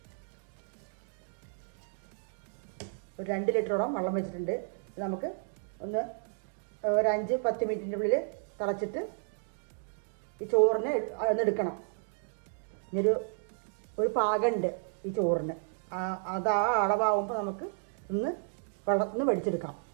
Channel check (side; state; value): left; silent; digital silence